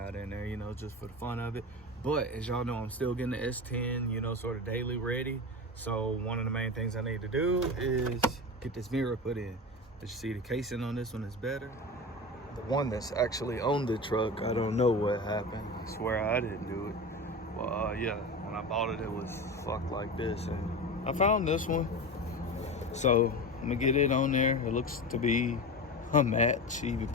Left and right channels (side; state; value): both; normal; correlation 0.26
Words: in there, just for the fun of it. But as y'all know, I'm still getting the S10, sort of daily ready. So one of the main things I need to do is get this mirror put in. As you see, the casing on this one is better. The one that's actually on the truck, I don't know what happened. I swear I didn't do it. Well, yeah, when I bought it, it was fucked like this, and I found this one. So I'm gonna get it on there. It looks to be a match, even